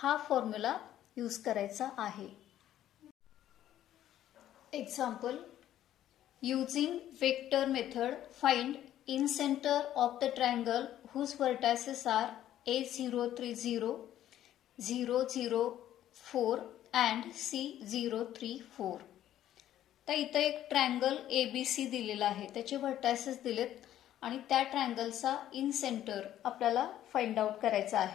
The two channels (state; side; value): quieter; right; 12.2 dB